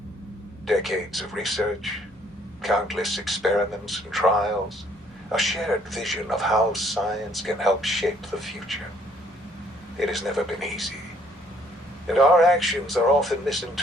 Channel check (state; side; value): noise; right; hum, 26 dB below the sound